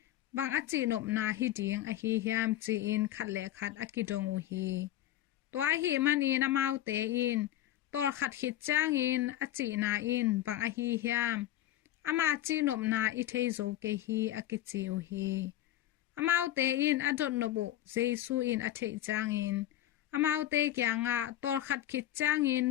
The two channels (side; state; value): right; quieter; 13.3 dB